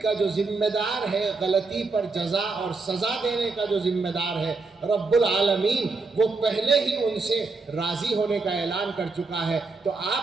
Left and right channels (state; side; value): quieter; left; 3.9 dB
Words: کا جو ذمہ دار ہے، غلطی پر جزا اور سزا دینے کا جو ذمہ دار ہے رب العالمین، وہ پہلے ہی ان سے راضی ہونے کا اعلان کر چکا ہے، تو